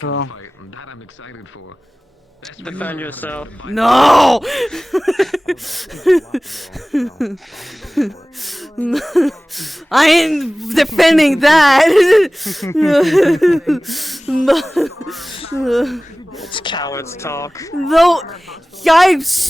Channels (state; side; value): normal; both; correlation 0.98